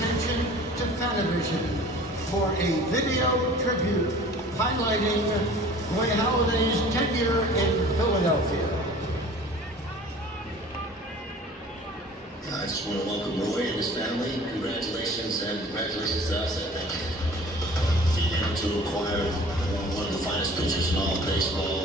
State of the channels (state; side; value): normal; both; correlation 0.46